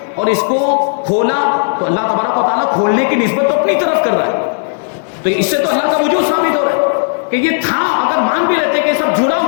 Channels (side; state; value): right; silent; digital silence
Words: اور اس کو کھولا، تو اللہ تبارک و تعالیٰ کھولنے کی نسبت تو اپنی طرف کر رہا ہے۔ تو اس سے تو اللہ کا وجود ثابت ہو رہا ہے کہ یہ تھا. اگر مان بھی لیتے کہ سب جڑا